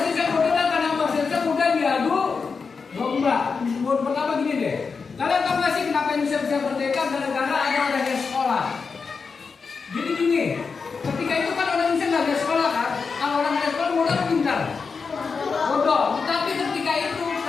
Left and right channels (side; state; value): right; quieter; 5.1 dB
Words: Indonesia bodoh dan karena bahasa Indonesia mudah diadu domba. Pertama gini deh, kalian tahu nggak sih kenapa Indonesia